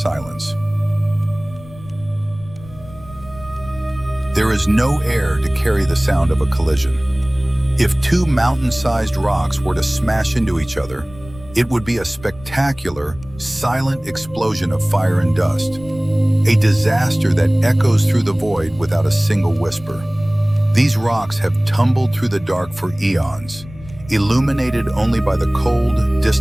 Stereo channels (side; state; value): left; noise; rumble, 19 dB below the sound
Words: There is no air to carry the sound of a collision. If two mountain-sized rocks were to smash into each other, it would be a spectacular, silent explosion of fire and dust, a disaster that echoes through the void without a single whisper. These rocks have tumbled through the dark for eons, illuminated only by the cold,